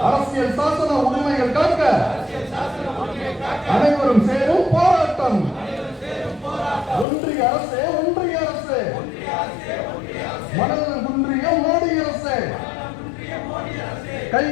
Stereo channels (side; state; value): right; drops out; at 7.1 s